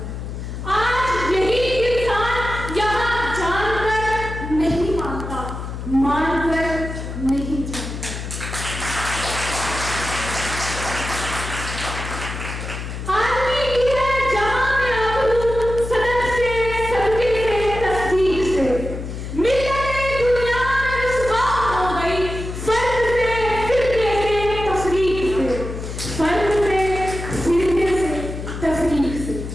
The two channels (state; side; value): noise; left; hum, 7 dB below the sound